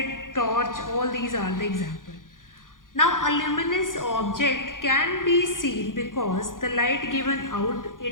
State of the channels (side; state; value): right; late; 0.89 ms